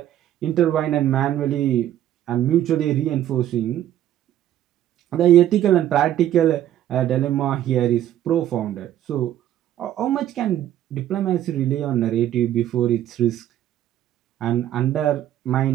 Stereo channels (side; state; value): left; quieter; 12.0 dB